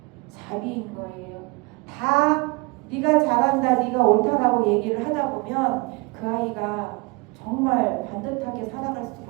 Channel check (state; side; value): quieter; left; 27.1 dB